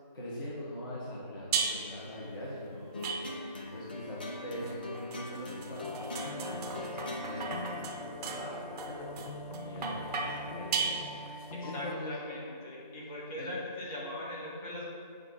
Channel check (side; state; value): both; inverted; correlation -0.31